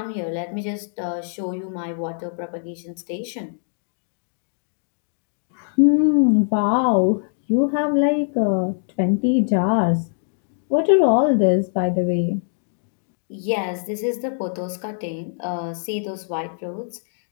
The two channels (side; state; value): right; silent; digital silence